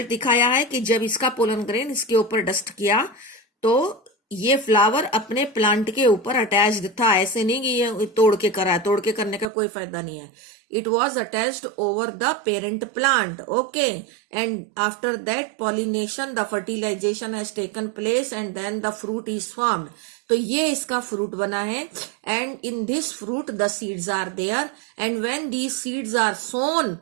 दिखाया है कि जब इसका पोलन ग्रेन इसके ऊपर डस्ट किया तो ये फ्लावर अपने प्लांट के ऊपर अटैच्ड था. ऐसे नहीं कि ये तोड़ के करा है, तोड़ के करने का कोई फायदा नहीं है. It was attached over the parent plant. Okay, and after that pollination the fertilization has taken place and then the fruit is formed. तो ये इसका फ्रूट बना है, and in this fruit the seeds are there, and when these seeds are sown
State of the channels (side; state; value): left; drops out; at 9.5 s